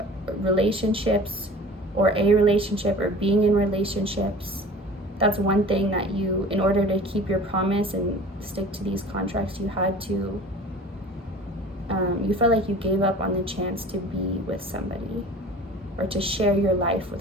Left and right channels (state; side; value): normal; both; correlation 0.42